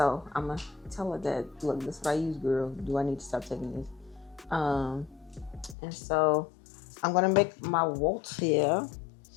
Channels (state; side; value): drops out; right; at 5.8 s